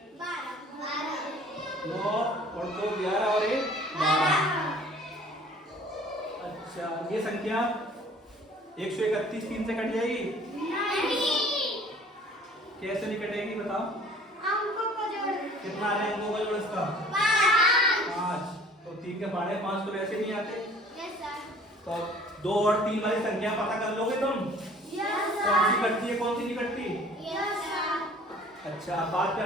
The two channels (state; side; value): normal; both; correlation 0.51